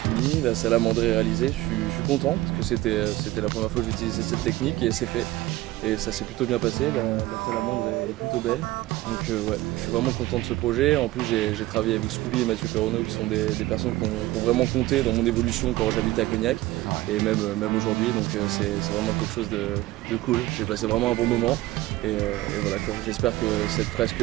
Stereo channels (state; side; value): quieter; left; 17.6 dB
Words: la salamandre est réalisée, je suis content parce que c'était la première fois que j'utilisais cette technique et c'est fait. Et ça s'est plutôt bien passé, la salamandre est plutôt belle. Donc ouais, je suis vraiment content de ce projet. En plus j'ai travaillé avec Scooby et Mathieu Perronneau qui sont des personnes qui ont vraiment compté dans mon évolution quand j'habitais à Cognac et même aujourd'hui. Donc c'est vraiment quelque chose de cool. J'ai passé vraiment un bon moment et voilà quoi. J'espère que cette